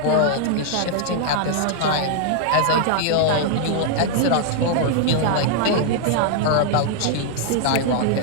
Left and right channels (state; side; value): different; both; correlation 0.00